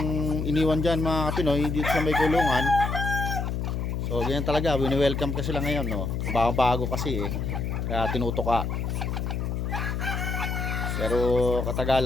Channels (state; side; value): noise; left; hum, 2 dB below the sound